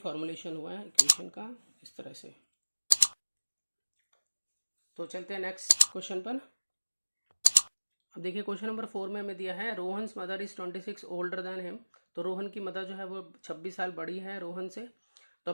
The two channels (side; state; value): both; inverted; correlation -1.00